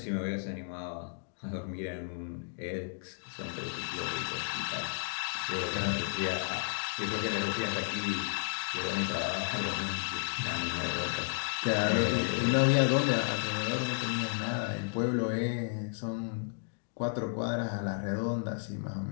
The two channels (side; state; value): right; silent; digital silence